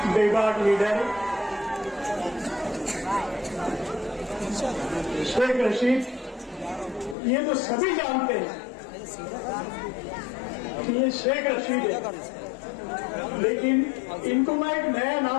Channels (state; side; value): drops out; right; at 7.2 s